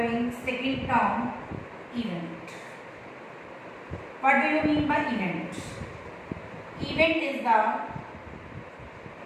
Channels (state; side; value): identical; both; correlation 1.00